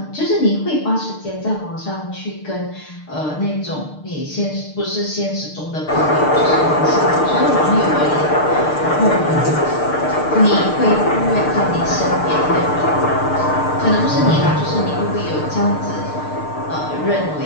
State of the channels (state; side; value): late; right; 6.6 ms